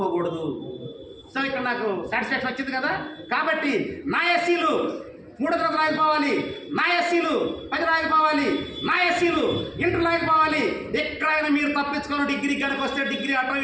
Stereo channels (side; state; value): both; identical; correlation 1.00